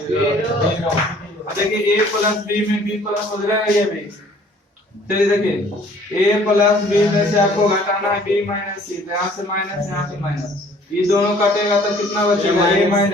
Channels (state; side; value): normal; both; correlation 0.56